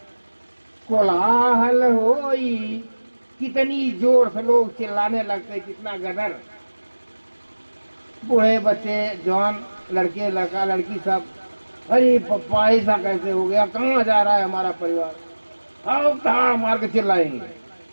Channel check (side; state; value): both; inverted; correlation -1.00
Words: कोलाहल होई। कितनी जोर से लोग चिल्लाने लगते, कितना गदर। बूढ़े बच्चे, जवान, लड़के, लड़का, लड़की, सब, अरे पप्पा ऐसा कैसे हो गया, कहाँ जा रहा है हमारा परिवार, आओ कहाँ मार के चिल्लाएंगे।